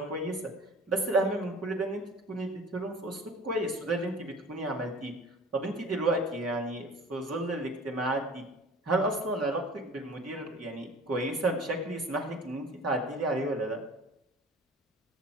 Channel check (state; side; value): normal; both; correlation 0.43